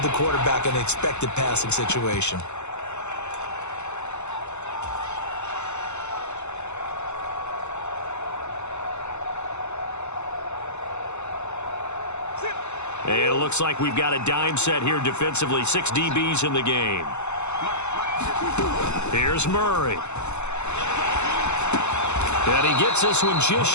the quarterback in an expected passing situation. And it looks like we've got a dime set here defensively. 6 DBs in the game. Here's Murray. And he gets this one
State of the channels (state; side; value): late; right; 0.82 ms